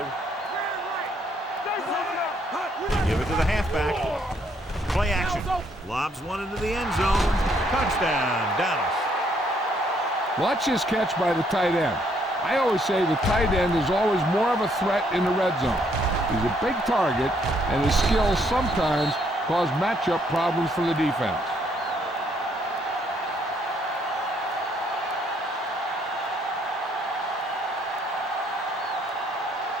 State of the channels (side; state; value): both; normal; correlation 0.69